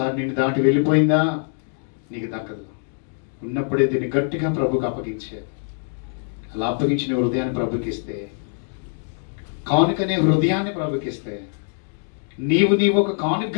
నిన్ను దాటి వెళ్ళిపోయిందా నీకు దక్కదు. ఉన్నప్పుడే దీన్ని గట్టిగా ప్రభుకి అప్పగించేది. అలా అప్పగించిన హృదయాన్ని ప్రభుకి ఇస్తే, కానుకనే హృదయాన్ని ప్రభుకి ఇస్తే, నీవు ఒక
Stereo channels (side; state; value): right; silent; 60 dB below the other